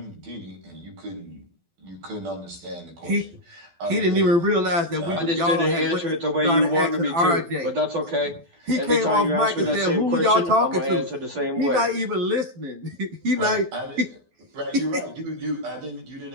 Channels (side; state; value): left; late; 12 ms